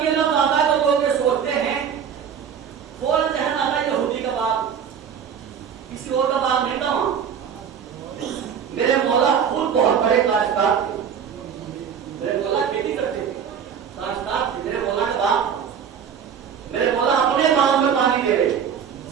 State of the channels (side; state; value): left; quieter; 7.7 dB